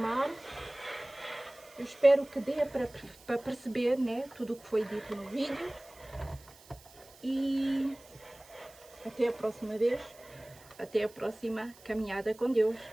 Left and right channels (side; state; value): right; noise; hiss, 23 dB below the sound